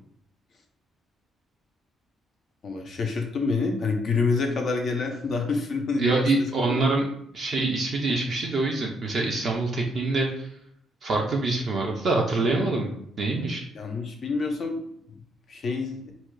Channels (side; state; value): both; normal; correlation 0.71